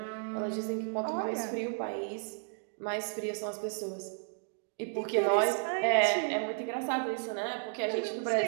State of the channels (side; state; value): left; silent; 56 dB below the other